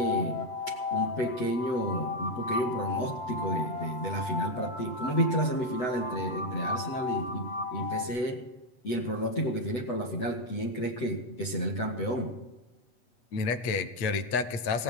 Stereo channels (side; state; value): right; late; 8.2 ms